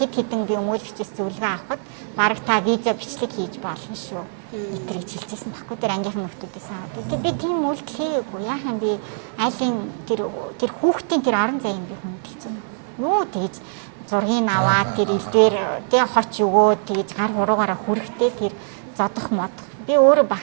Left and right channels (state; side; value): silent; left; 64 dB below the other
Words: хэдэн би өмгөөлөгчөөс зөвлөгөө авахад баг та виза бичлэг хийж болно шүү. Итрийг хэлжсэн баггүй тэр ангийнхан нөхдүүдээс аваад. Тэг би тийм үйлдэл хийгээгүй. Яахан би айлын тэр хүүхдийн тэр орон зайг би хүндэлж байна. Юу тэгж зургийг аваад тэр элдвэр тэг хоч өгөөд тэгж гар хуруугаараа хүрэхтэй тэр зодох модох. Би өөрөө